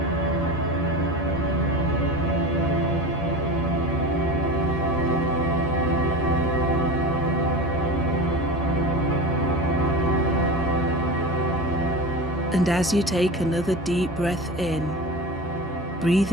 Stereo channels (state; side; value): normal; both; correlation 0.30